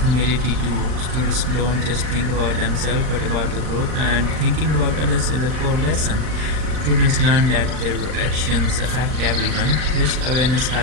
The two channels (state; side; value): late; left; 39 ms